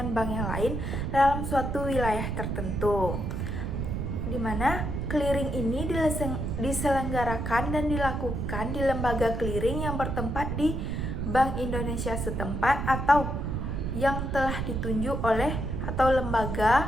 bank yang lain dalam suatu wilayah tertentu, di mana clearing ini diselenggarakan dan dilakukan di lembaga clearing yang bertempat di Bank Indonesia setempat atau yang telah ditunjuk oleh atau lembaga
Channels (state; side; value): noise; right; rumble, 2 dB below the sound